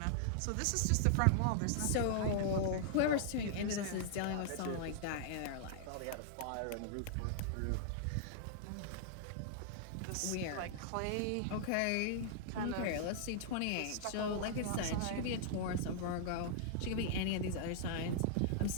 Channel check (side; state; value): both; different; correlation -0.01